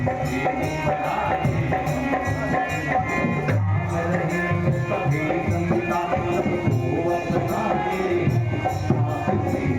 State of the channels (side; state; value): both; identical; correlation 1.00